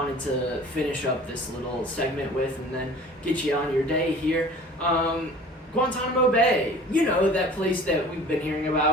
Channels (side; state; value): both; normal; correlation 0.45